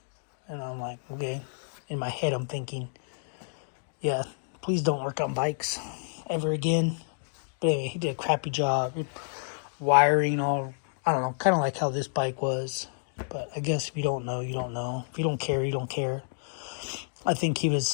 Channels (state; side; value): silent; right; digital silence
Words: And I'm like, okay. In my head, I'm thinking, yeah, please don't work on bikes ever again. But anyway, he did a crappy job. Wiring all, I don't know, kind of like how this bike was. But I guess if you don't know, you don't know. If you don't care, you don't care. I think he